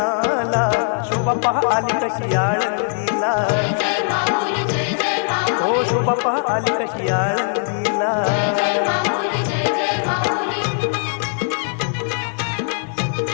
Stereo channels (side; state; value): right; silent; 55 dB below the other